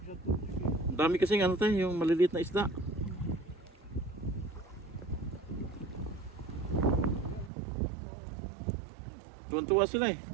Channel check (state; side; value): drops out; left; at 7.5 s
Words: sa tubig eh. Ang dami kasing ano tayo, yung maliliit na isda. Tuwan-tuwa sila eh.